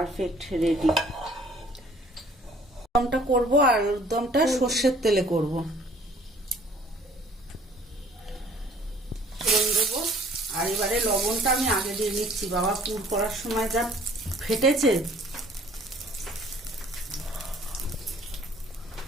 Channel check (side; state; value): both; normal; correlation 0.55